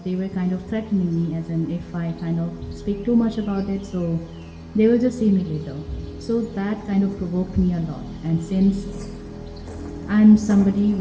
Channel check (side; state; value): both; identical; correlation 1.00